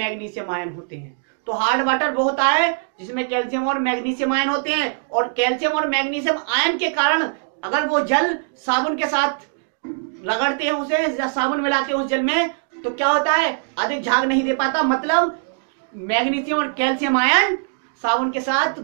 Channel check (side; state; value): left; silent; digital silence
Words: आयन होते हैं। तो हार्ड वाटर वो होता है जिसमें कैल्शियम और मैग्नीशियम आयन होते हैं, और कैल्शियम और मैग्नीशियम आयन के कारण अगर वो जल साबुन के साथ रगड़ते हैं उसे या साबुन मिलाते हैं उस जल में, तो क्या होता है? अधिक झाग नहीं दे पाता, मतलब मैग्नीशियम और कैल्शियम आयन साबुन के साथ